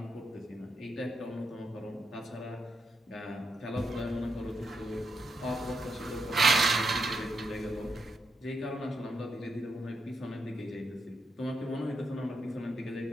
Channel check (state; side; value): normal; both; correlation 0.82